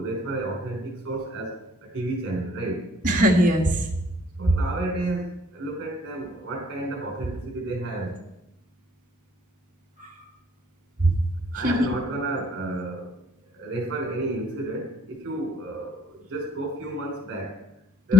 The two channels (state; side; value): normal; both; correlation 0.61